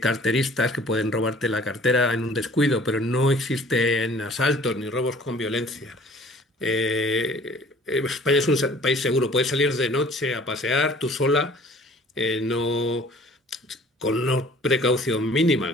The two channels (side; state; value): both; normal; correlation 0.51